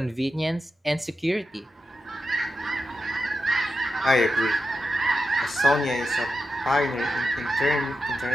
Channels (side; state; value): both; normal; correlation 0.89